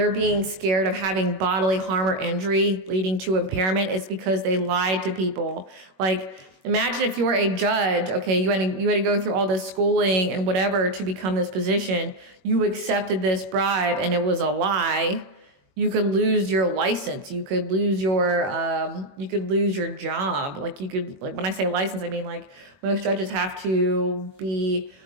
being scared of having bodily harm or injury leading to impairment, it's because they lied to people. Like imagine if you were a judge, okay, you had to go through all this schooling and whatever to become this position. You accepted this bribe and it was a lie. You could lose your license. You could lose your job. Like when I say license, I mean like most judges have to be,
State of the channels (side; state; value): left; late; 21 ms